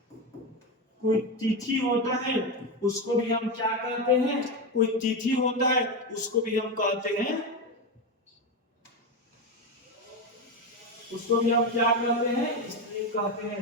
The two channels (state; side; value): normal; both; correlation 0.14